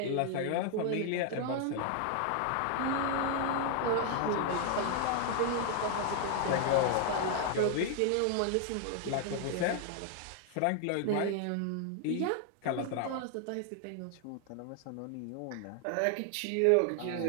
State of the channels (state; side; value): different; both; correlation 0.00